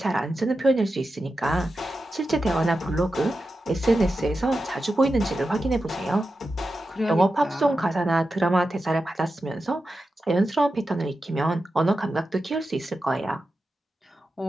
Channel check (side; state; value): both; normal; correlation 0.91